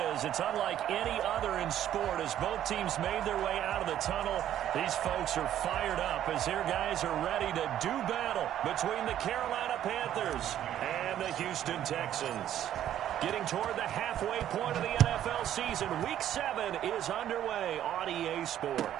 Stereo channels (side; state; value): left; quieter; 11.3 dB